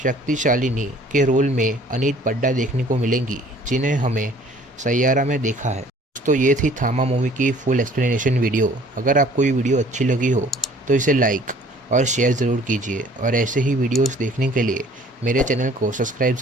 के रोल में अनीत पड्डा देखने को मिलेंगी, जिन्हें हमें सैयारा में देखा है। तो ये थी थामा मूवी की फुल एक्सप्लेनेशन वीडियो। अगर आपको ये वीडियो अच्छी लगी हो तो इसे लाइक और शेयर ज़रूर कीजिए और ऐसे ही वीडियोस देखने के लिए मेरे चैनल को सब्सक्राइब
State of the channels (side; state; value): both; normal; correlation 0.54